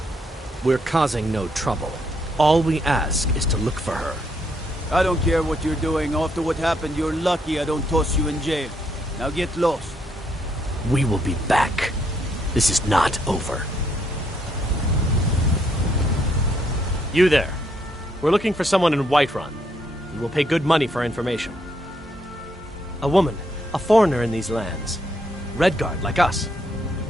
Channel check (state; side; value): normal; both; correlation 0.73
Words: We're causing no trouble. All we ask is to look for her. I don't care what you're doing. After what happened, you're lucky I don't toss you in jail. Now get lost. We will be back. This is not over. You there. We're looking for someone in Whiterun. We will pay good money for information. A woman, a foreigner in these lands. Redguard, like us.